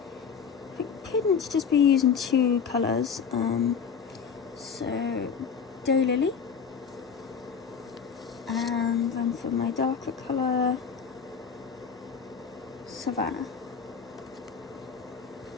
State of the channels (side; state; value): right; quieter; 6.5 dB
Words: I couldn't just be using two colours. So Daylily, and then for my darker colour, Savannah.